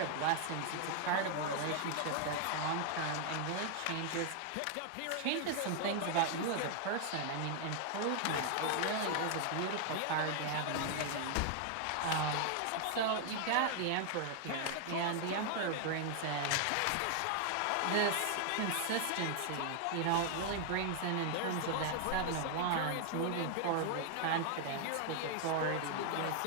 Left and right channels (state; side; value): different; both; correlation 0.00